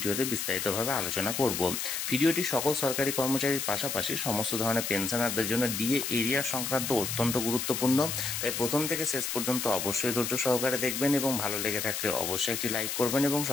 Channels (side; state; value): left; noise; hiss, 3 dB below the sound